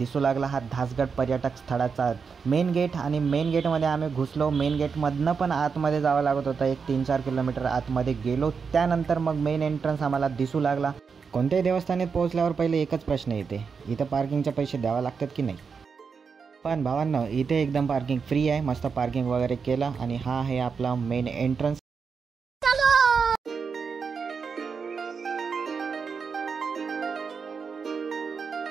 लागला हा धासगड पर्यटक स्थळाचा मेन गेट. आणि मेन गेटमध्ये आम्ही घुसलो. मेन गेटमधनं पण आतमध्ये जावं लागत होतं, 1-3-4 किलोमीटर आतमध्ये गेलो. त्यानंतर मग मेन एंट्रन्स आम्हाला दिसू लागला. कोणत्याही देवस्थानात पोहोचल्यावर पहिले एकच प्रश्न येते, इथं पार्किंगचे पैसे द्यावे लागतात की नाही. पण भावांनो, इथे एकदम पार्किंग फ्री आहे. मस्त पार्किंग वगैरे केलं आणि हा आहे आपला मेन एंट्रन्स.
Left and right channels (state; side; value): quieter; left; 5.7 dB